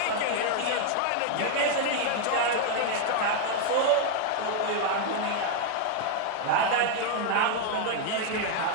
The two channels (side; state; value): both; different; correlation 0.00